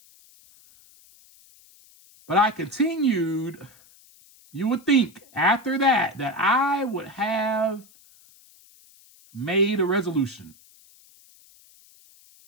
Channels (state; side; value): noise; left; hiss, 27 dB below the sound